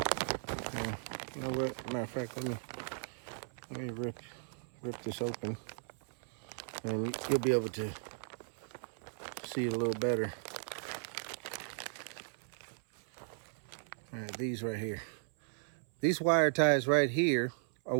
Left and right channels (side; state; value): left; silent; 53 dB below the other